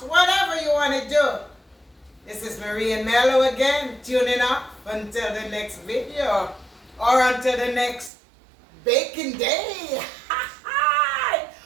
whatever you want to do. This is Marie and Mello again, tuning up until the next video or until the next baking day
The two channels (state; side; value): drops out; left; at 8.1 s